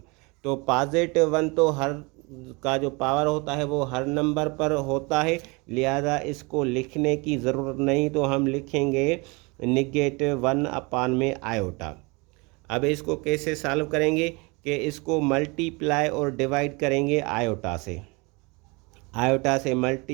तो +1 तो हर का जो पावर होता है वो हर नंबर पर होता है, लिहाजा इसको लिखने की ज़रूरत नहीं, तो हम लिखेंगे -1 अपान में आयोटा। अब इसको कैसे सॉल्व करेंगे कि इसको मल्टीप्लाई और डिवाइड करेंगे आयोटा से, आयोटा से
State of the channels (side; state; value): left; quieter; 27.8 dB